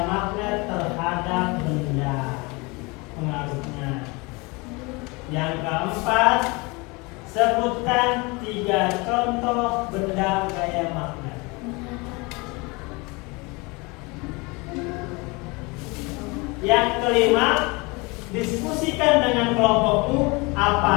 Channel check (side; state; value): right; quieter; 26.7 dB